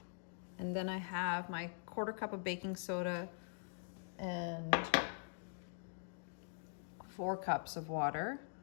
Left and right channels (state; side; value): silent; right; digital silence